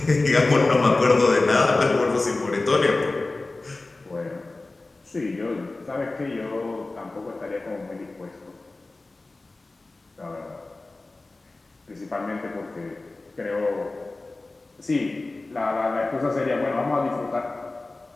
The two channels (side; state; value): right; quieter; 3.2 dB